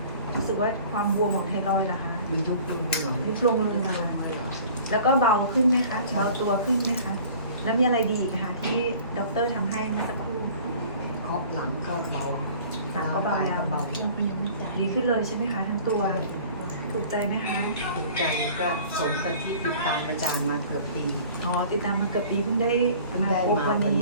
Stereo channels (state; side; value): inverted; both; correlation -0.47